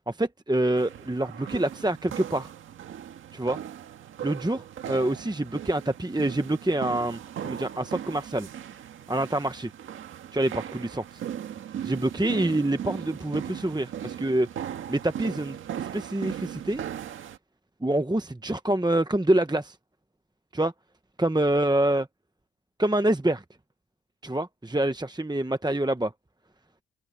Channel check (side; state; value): both; normal; correlation 0.79